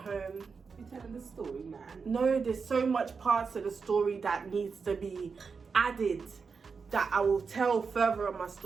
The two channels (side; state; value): left; quieter; 5.3 dB